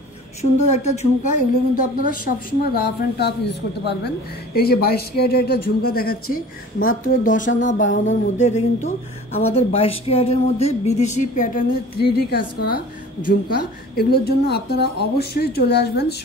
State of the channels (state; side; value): normal; both; correlation 0.43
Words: সুন্দর একটা ঝুমকা, এগুলো কিন্তু আপনারা সবসময় রাফ অ্যান্ড টাফ ইউজ করতে পারবেন। এই যে 22 ক্যারেটের একটা ঝুমকা দেখাচ্ছি মাত্র 10 আনা 12 আনার মধ্যে। এটা কিন্তু আমাদের 22 ক্যারেটের মধ্যে বিদেশি প্যাটার্নে 3D কাজ করা ঝুমকা। এগুলোর জন্য আপনারা অবশ্যই চলে আসবেন